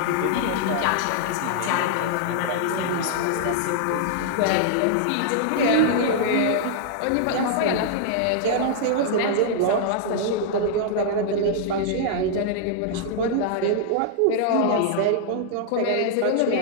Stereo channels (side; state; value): both; different; correlation -0.01